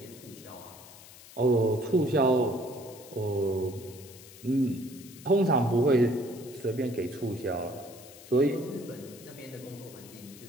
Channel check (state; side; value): noise; left; hiss, 19 dB below the sound